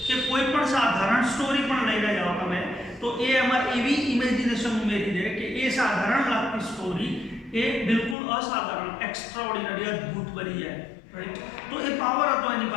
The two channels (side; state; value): right; drops out; at 8.2 s